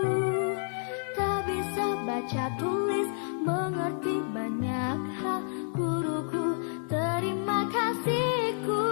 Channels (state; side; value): silent; right; digital silence